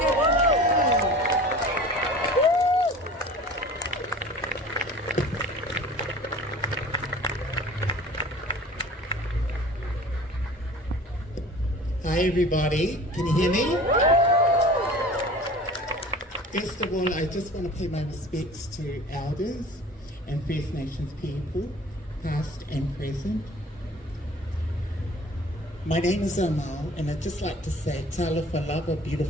Mo! Hi everybody, can you hear me? First of all, I just want to pay my respects to elders and First Nations people, past and present. My name is Amal, and I'd just like to say, Talofa lava,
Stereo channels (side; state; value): both; normal; correlation 0.43